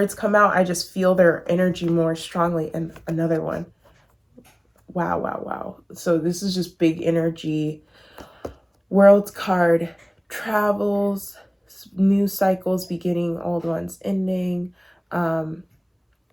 come out, I just feel their energy more strongly. And another one. Wow, wow, wow. So this is just big energy. World card, travels, new cycles beginning, old ones ending.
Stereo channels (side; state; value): both; identical; correlation 1.00